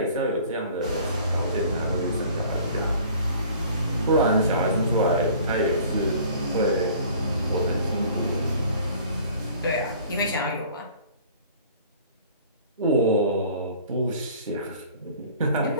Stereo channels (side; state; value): both; inverted; correlation -0.50